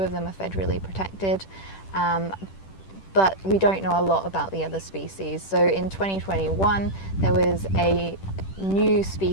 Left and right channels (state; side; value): late; right; 10 ms